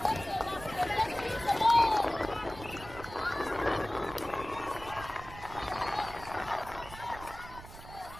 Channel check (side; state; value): right; noise; rumble, 15 dB below the sound